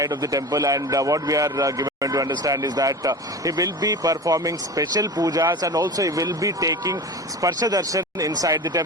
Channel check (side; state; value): both; normal; correlation 0.31